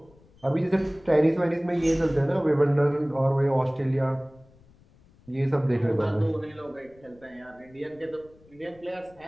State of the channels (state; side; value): noise; left; rumble, 28 dB below the sound